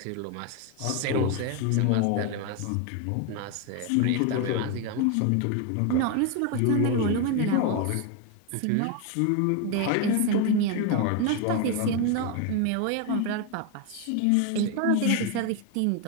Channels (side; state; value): both; different; correlation 0.02